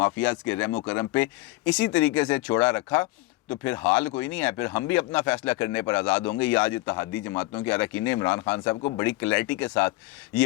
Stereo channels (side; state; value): right; quieter; 20.0 dB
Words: کے رحم و کرم پہ اسی طریقے سے چھوڑا رکھا, تو پھر حال کوئی نہیں ہے, پھر ہم بھی اپنا فیصلہ کرنے پر آزاد ہوں گے. یہ آج اتحادی جماعتوں کے اراکین نے عمران خان صاحب کو بڑی کلیئرٹی کے ساتھ